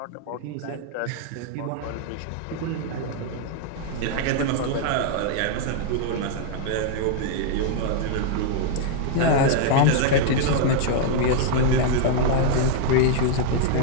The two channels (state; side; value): different; both; correlation 0.00